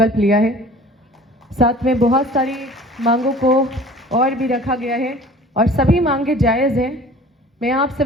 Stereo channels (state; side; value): normal; both; correlation 0.46